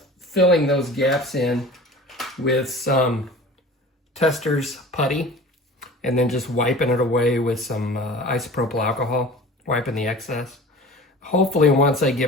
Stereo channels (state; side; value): normal; both; correlation 0.40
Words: filling those gaps in with some Tester's putty and then just wiping it away with some isopropyl alcohol, wiping the excess. Hopefully once I